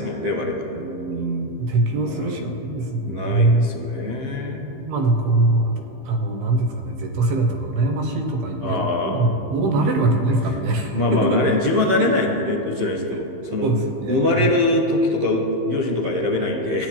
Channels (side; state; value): left; late; 15 ms